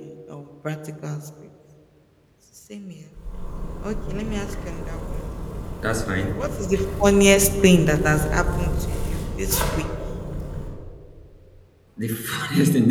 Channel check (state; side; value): identical; both; correlation 1.00